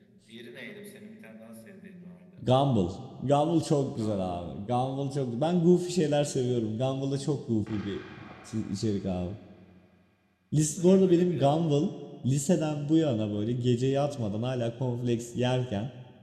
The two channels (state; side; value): identical; both; correlation 1.00